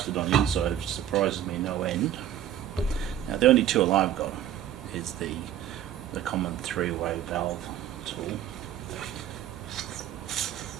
on the inside, which surprises me no end. Now the only tool I've got is the common three-way valve tool.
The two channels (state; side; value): quieter; left; 10.9 dB